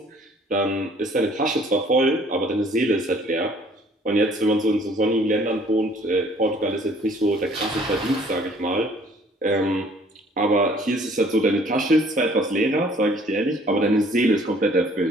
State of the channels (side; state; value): both; normal; correlation 0.57